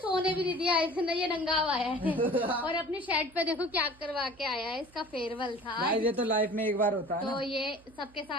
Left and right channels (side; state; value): right; noise; hum, 27 dB below the sound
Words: भी नहीं दिया, इसने ये नंगा हुआ है और अपनी शर्ट पे देखो क्या करवा के आया है, इसका फेयरवेल था। भाई ये तो लाइफ में एक बार होता है तो ना। ये सबके